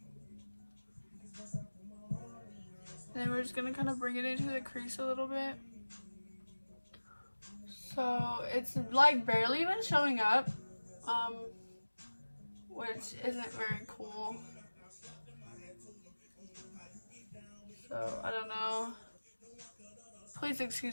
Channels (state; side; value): inverted; both; correlation -1.00